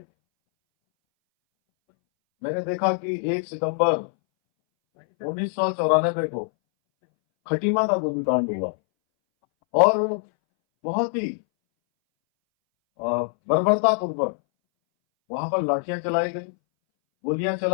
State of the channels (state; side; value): silent; right; 61 dB below the other